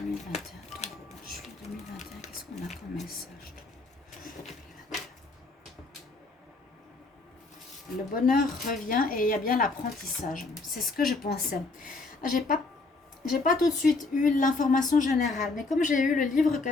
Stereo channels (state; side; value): quieter; right; 3.6 dB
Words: taureau. Juillet 2021, qu'est-ce qu'on a comme message? Le bonheur revient et il y a bien l'apprentissage. C'est ce que je pensais. J'ai pas tout de suite eu l'information générale. Mais comme j'ai eu le livre